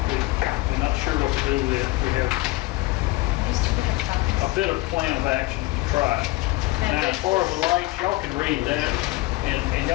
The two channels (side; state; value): right; quieter; 20.2 dB